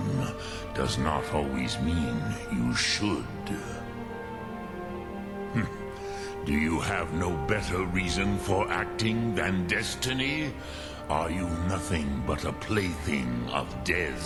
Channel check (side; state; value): both; identical; correlation 1.00